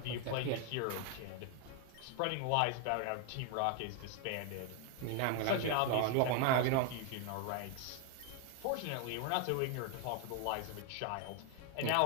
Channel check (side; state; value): both; different; correlation 0.00